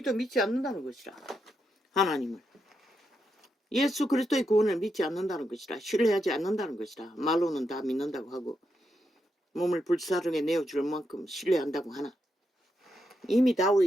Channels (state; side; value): normal; both; correlation 0.83